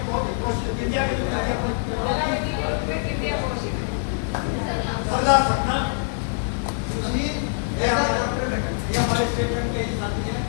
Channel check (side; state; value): right; silent; 62 dB below the other